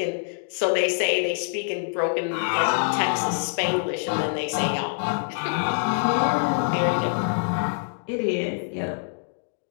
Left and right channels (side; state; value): right; silent; digital silence